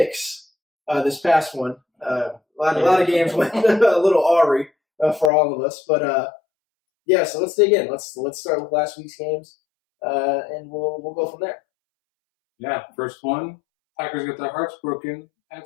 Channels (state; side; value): drops out; right; at 5.3 s